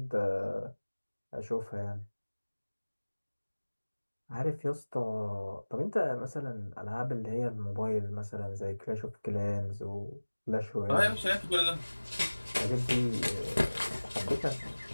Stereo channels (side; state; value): both; inverted; correlation -1.00